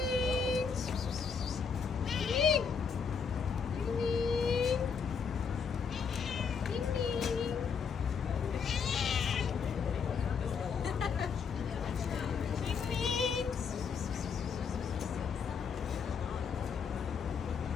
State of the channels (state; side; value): quieter; right; 6.1 dB